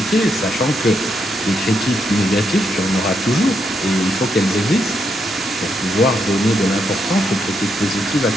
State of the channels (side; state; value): both; normal; correlation 0.79